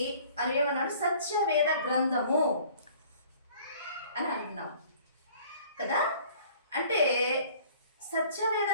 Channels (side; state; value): both; inverted; correlation -0.53